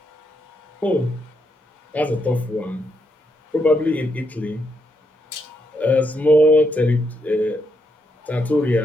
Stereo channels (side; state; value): both; normal; correlation 0.79